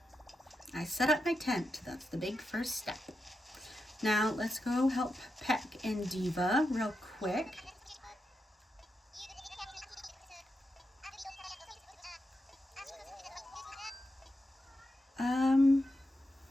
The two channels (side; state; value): both; normal; correlation 0.87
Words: I set up my tent. That's the big first step. Now let's go help Peck and Diva real quick.